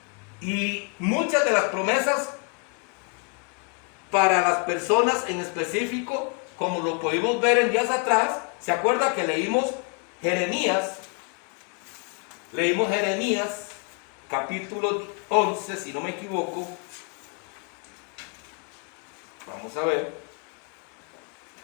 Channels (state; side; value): quieter; right; 35.7 dB